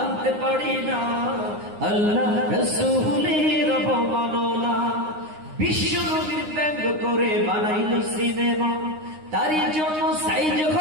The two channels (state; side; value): late; left; 9.7 ms